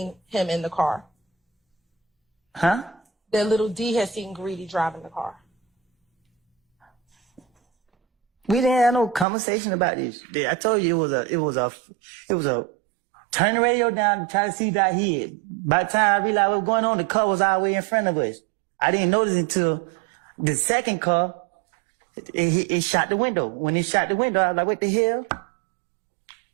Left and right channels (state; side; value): drops out; left; at 9.2 s